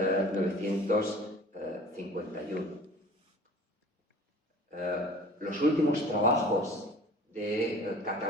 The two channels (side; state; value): both; normal; correlation 0.46